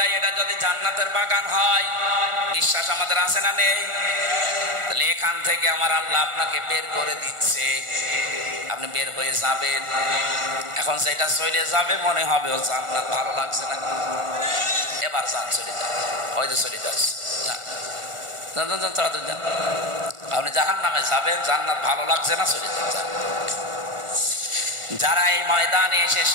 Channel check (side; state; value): left; late; 1.5 ms